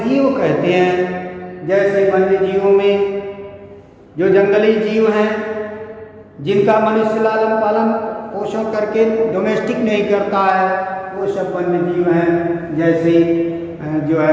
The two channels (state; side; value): identical; both; correlation 1.00